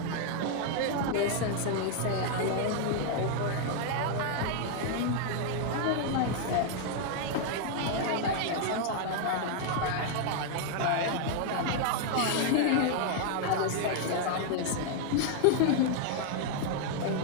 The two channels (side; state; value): both; different; correlation 0.00